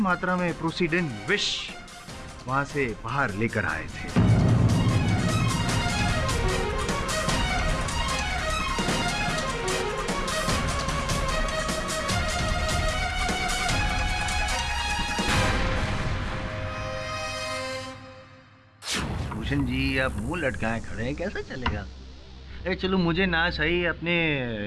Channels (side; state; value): both; identical; correlation 1.00